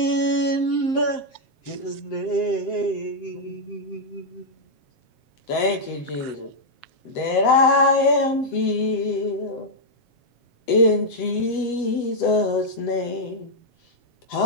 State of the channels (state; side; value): late; right; 7.9 ms